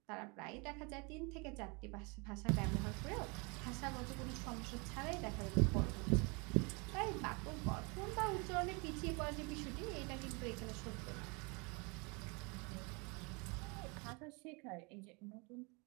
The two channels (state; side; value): quieter; left; 30.4 dB